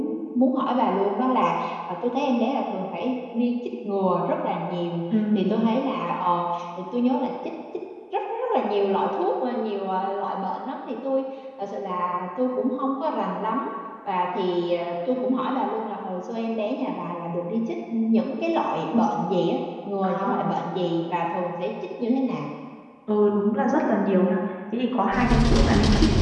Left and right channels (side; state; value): both; identical; correlation 1.00